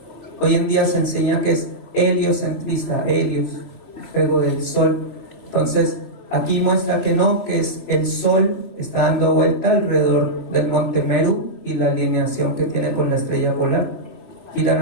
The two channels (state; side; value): late; right; 2.8 ms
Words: Hoy en día se enseña que es heliocentrista, helios, juego del Sol. Entonces aquí muestra que no, que es el Sol está dando vuelta alrededor del Monte Meru y la alineación que tiene con la estrella polar. Giran